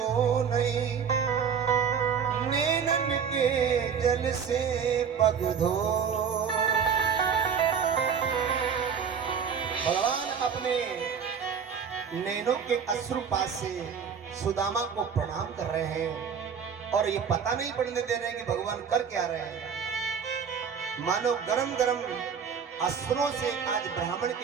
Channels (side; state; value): left; quieter; 6.9 dB